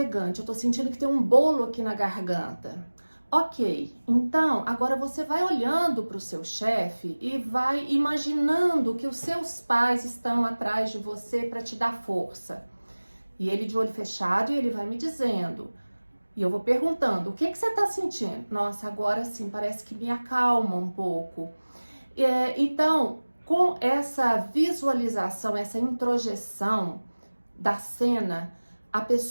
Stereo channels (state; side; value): inverted; both; correlation -1.00